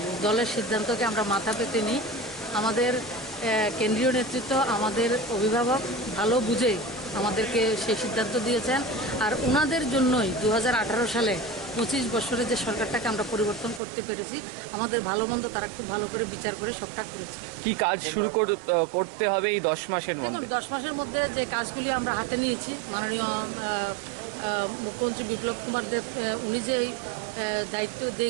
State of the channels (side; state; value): left; drops out; at 13.8 s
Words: দলের সিদ্ধান্তকে আমরা মাথা পেতে নিই। আমাদের কেন্দ্রীয় নেতৃত্ব, আমাদের অভিভাবক ভালো বুঝে আমাদেরকে সেই সিদ্ধান্ত দিয়েছেন। আর ওনাদের জন্যই 2018 সালে 25 বছরে যে সরকারটাকে আমরা পরিবর্তন করতে পেরেছি। আমাদের ভালো মন্দ তারা খুব ভালো করে বিচার করে সবটা করেছে। কি কাজ শুরু করতে হবে এই 10 মাসের মধ্যে? 10 মাসের মধ্যে যে কাজগুলি আমরা হাতে নিয়েছি, মাননীয় মুখ্যমন্ত্রী বিপ্লব কুমার দেব উনি যে দায়িত্ব যে